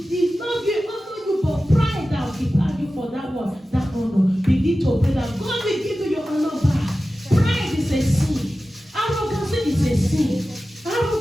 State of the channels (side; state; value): both; normal; correlation 0.95